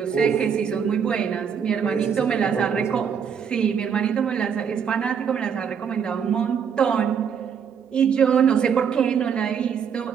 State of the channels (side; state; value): left; quieter; 7.2 dB